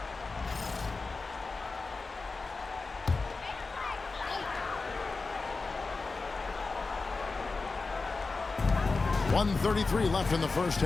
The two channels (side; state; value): right; quieter; 3.9 dB